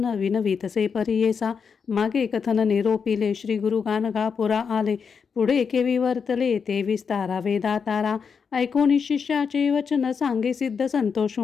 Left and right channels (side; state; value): right; quieter; 6.1 dB